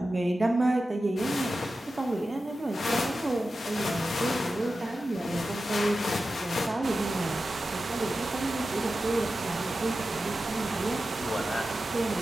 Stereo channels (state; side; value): normal; both; correlation 0.93